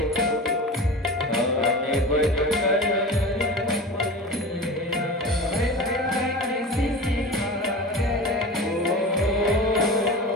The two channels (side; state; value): both; normal; correlation 0.32